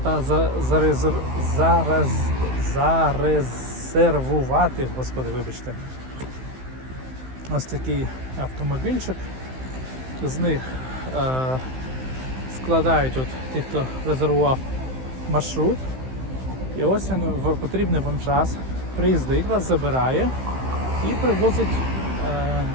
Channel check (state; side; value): late; left; 15 ms